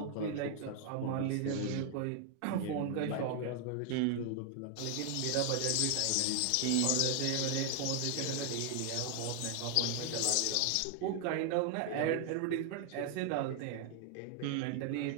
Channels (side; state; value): both; different; correlation 0.00